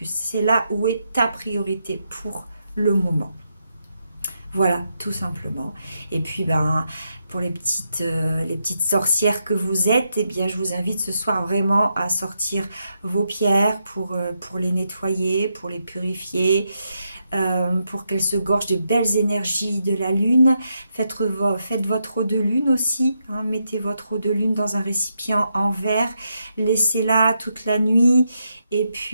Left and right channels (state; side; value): inverted; both; correlation -0.82